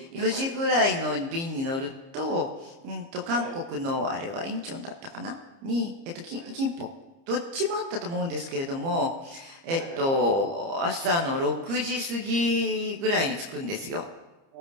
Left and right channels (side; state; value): left; late; 30 ms